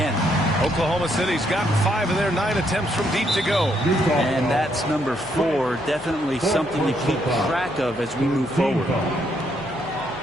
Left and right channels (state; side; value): noise; left; hum, 19 dB below the sound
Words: Oklahoma City's gotten 5 of their 9 attempts from deep to go. And that's number 4. Definitely something to keep track of as we move forward.